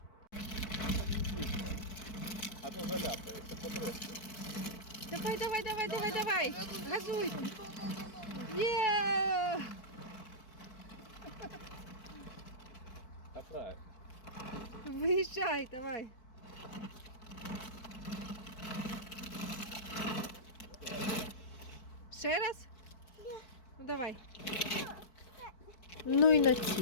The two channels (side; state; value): right; late; 4.6 ms